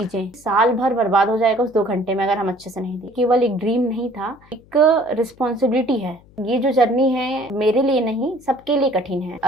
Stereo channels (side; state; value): left; noise; hum, 27 dB below the sound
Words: साल भर बर्बाद हो जाएगा उस 2 घंटे में अगर हम अच्छे से नहीं दें। केवल एक ड्रीम नहीं था, एक रिस्पॉन्सिबिलिटी है। ये जो जर्नी है मेरे लिए नहीं, सबके लिए कठिन है।